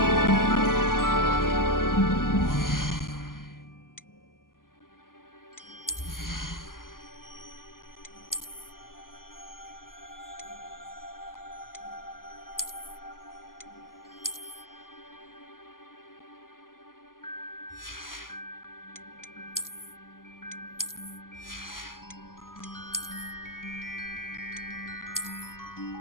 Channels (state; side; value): late; right; 0.91 ms